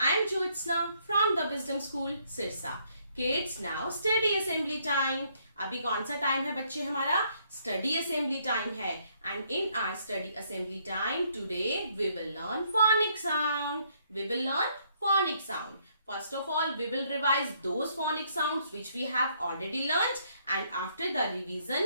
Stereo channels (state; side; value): inverted; both; correlation -0.69